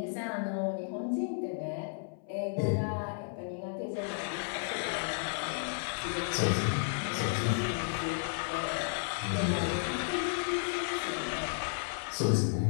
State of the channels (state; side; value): silent; right; 56 dB below the other